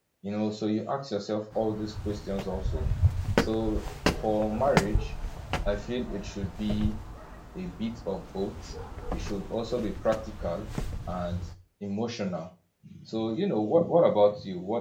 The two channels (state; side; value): identical; both; correlation 1.00